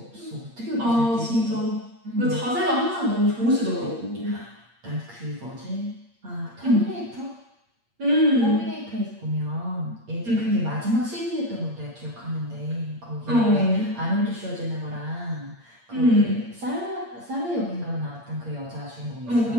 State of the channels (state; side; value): late; left; 8.6 ms